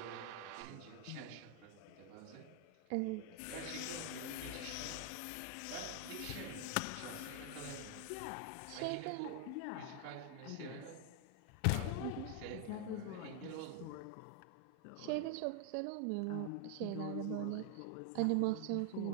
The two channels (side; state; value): both; different; correlation 0.00